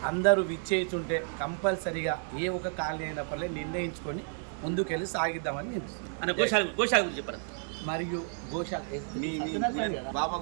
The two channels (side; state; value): left; silent; 57 dB below the other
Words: అందరూ విచ్చేస్తుంటే కంపల్సరిగా ఏ ఒక కాలనీ అయినప్పటికీ నిర్ణయించుకొని ముందుకెళ్ళి సాగిద్దామని నేను చెప్పారు. మరియు గోశాల